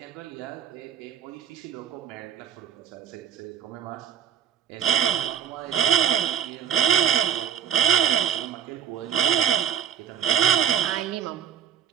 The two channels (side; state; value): left; quieter; 9.1 dB